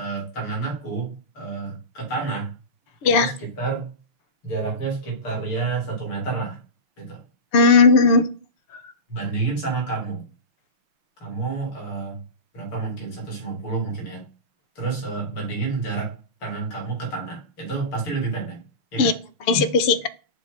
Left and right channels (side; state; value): right; late; 6.8 ms